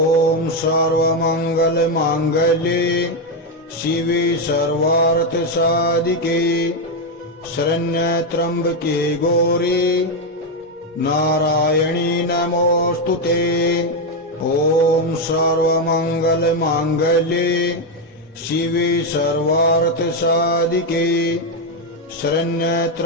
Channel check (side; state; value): both; normal; correlation 0.06